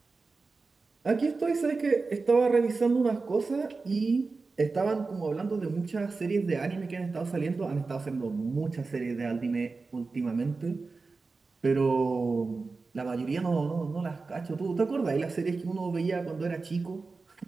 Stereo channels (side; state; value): left; quieter; 4.1 dB